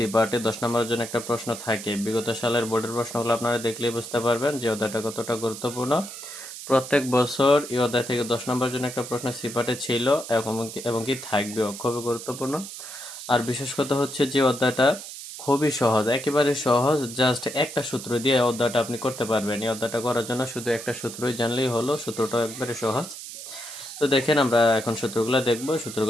পার্টে 10 নম্বরের জন্য একটা প্রশ্ন থাকে। বিগত সালের বোর্ডের প্রশ্নগুলো আপনারা দেখলেই বুঝতে পারবেন যে অধ্যায়টা কতটা গুরুত্বপূর্ণ। প্রত্যেক বছর এই অধ্যায় থেকে 10 নম্বরের জন্য একটা প্রশ্ন সি পার্টে ছিল এবং কি থাকবেও, খুবই গুরুত্বপূর্ণ। আর বিশেষ কথা হচ্ছে যে অধ্যায়টা খুবই সহজ, একেবারে সহজ। জাস্ট একটা সূত্র দিয়ে এই অধ্যায়টা আপনি করতে পারবেন। এই অধ্যায়টা করার জন্য শুধু একটা সূত্রই জানলেই হলো। সূত্রটাও একবারে সহজ। তো দেখেন, আমরা এখন সূত্রগুলো দেখবো।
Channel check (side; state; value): right; noise; hiss, 11 dB below the sound